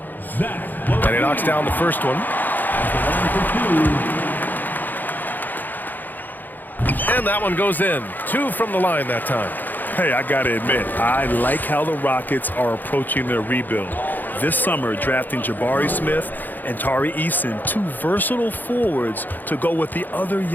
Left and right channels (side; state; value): right; late; 0.087 ms